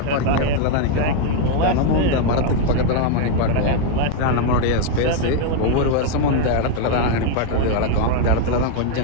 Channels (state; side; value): different; both; correlation 0.01